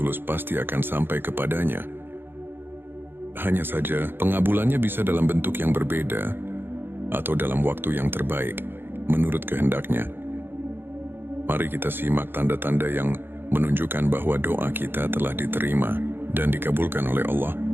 pasti akan sampai kepadanya. Hanya saja, pengabulannya bisa dalam bentuk yang berbeda, atau dalam waktu yang terbaik, menurut kehendaknya. Mari kita simak tanda-tanda yang menunjukkan bahwa doa kita telah diterima dan dikabulkan oleh Allah.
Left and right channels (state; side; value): late; left; 0.10 ms